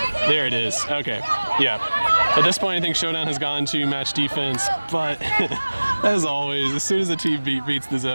There it is. Okay. Yeah. At this point, I think Showdown has gone to match defense, but as always, as soon as the team beats the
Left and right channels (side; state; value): both; inverted; correlation -1.00